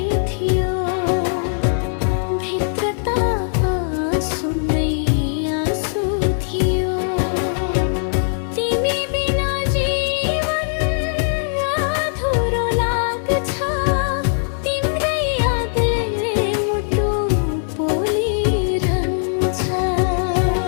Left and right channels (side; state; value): right; silent; 58 dB below the other